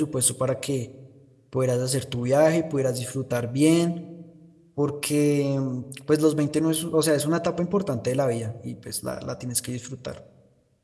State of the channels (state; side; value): identical; both; correlation 1.00